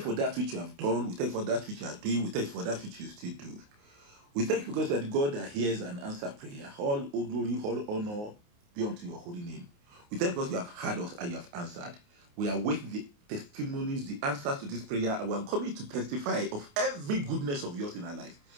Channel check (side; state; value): left; late; 28 ms